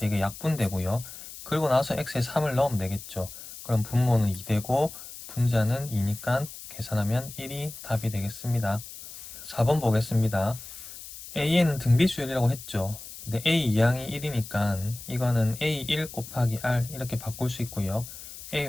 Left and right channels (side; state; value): left; noise; hiss, 13 dB below the sound